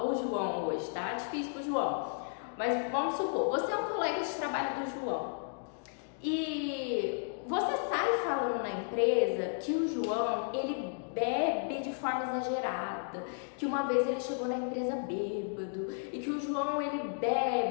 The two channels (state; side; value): silent; right; digital silence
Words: o João hoje, tá? Difícil pro João. Mas vamos supor, você é um colega de trabalho do João e você sai falando na empresa que o João, ele bebe de forma exagerada, que uma vez ele chegou na empresa bêbado e que o João, ele